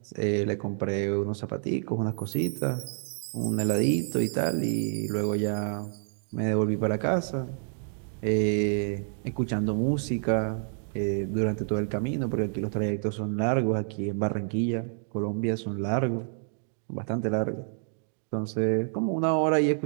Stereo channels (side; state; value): left; silent; digital silence